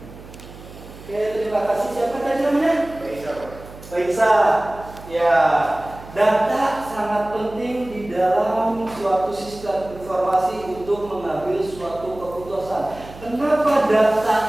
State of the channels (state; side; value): noise; right; hum, 17 dB below the sound